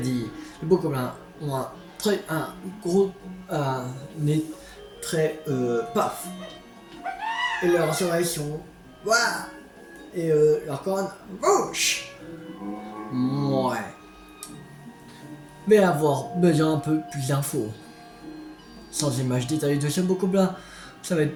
les beaux Gobelins ont un gros nez très paf. Et leurs oreilles sont... Ouah. Et leur corne... Bouche. Ouais. Mais avoir besoin un peu plus d'infos. Sans images détaillées de ce beau Gobelin, ça va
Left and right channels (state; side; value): identical; both; correlation 1.00